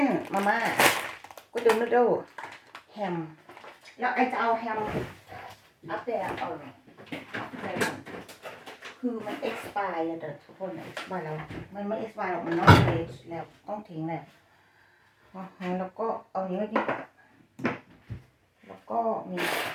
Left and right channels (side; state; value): both; identical; correlation 1.00